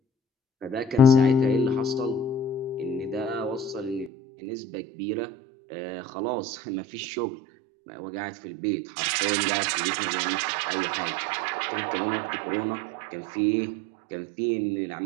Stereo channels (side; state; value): left; drops out; at 4.1 s